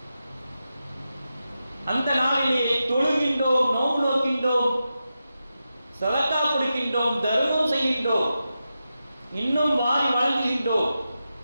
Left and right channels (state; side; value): inverted; both; correlation -0.90